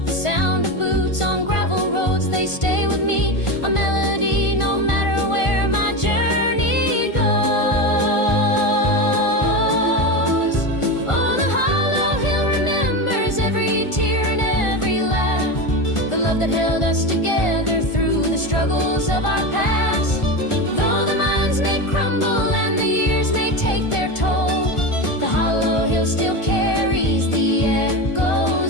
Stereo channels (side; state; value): right; late; 1.5 ms